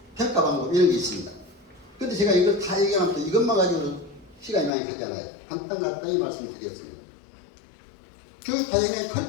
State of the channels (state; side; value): drops out; right; at 4.7 s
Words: 평가 방법 이런 게 있습니다. 근데 제가 이걸 다 얘기하면 또 이것만 가지고도 시간이 많이 가잖아요. 간단히 말씀드리겠습니다. 교육 과정에